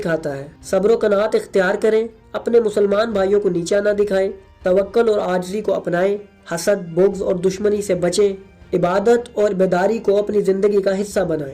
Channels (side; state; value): both; identical; correlation 1.00